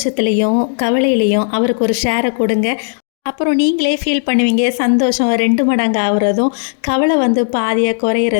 கவலையிலையும் அவருக்கு ஒரு ஷேரை கொடுங்க. அப்புறம் நீங்களே ஃபீல் பண்ணுவீங்க. சந்தோஷம் 2 மடங்கு ஆகுறதும், கவலை பாதியாக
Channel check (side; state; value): right; silent; digital silence